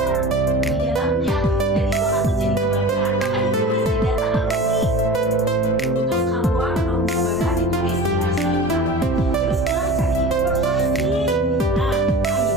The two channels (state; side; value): normal; both; correlation 0.36